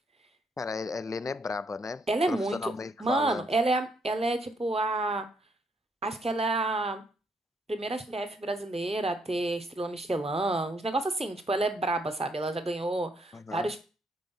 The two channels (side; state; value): both; normal; correlation 0.72